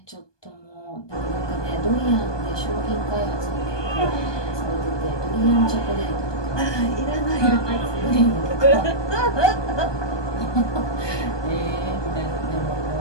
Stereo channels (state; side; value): late; right; 1.2 ms